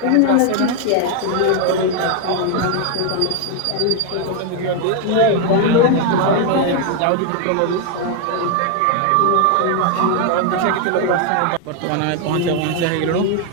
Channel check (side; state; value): both; different; correlation 0.01